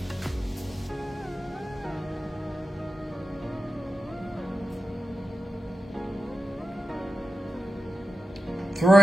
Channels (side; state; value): both; normal; correlation 0.90